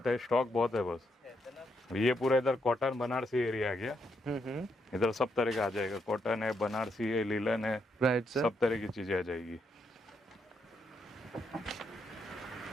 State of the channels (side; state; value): both; normal; correlation 0.79